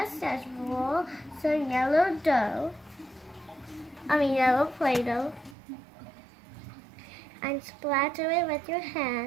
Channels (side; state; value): left; drops out; at 5.6 s